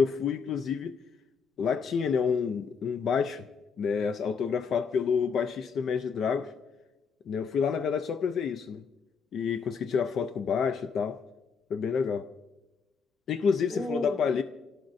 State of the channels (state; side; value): quieter; right; 5.8 dB